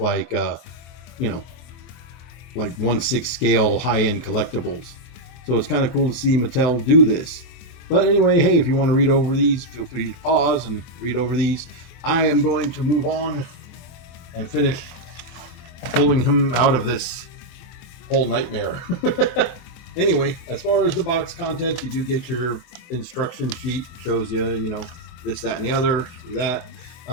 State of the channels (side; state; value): right; late; 24 ms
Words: like 1/6 scale high-end collectibles. So it's kind of cool to see Mattel do this. But anyway, hey, if you want to read over these, feel free to pause and read over these. I am going to move on and finish pulling him out of this whole nightmare. Anyway, as far as the box contents, you do get your instruction sheet. It shows you, this, that, and the other, through that.